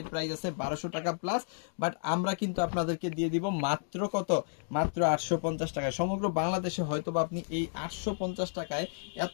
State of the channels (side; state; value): right; silent; digital silence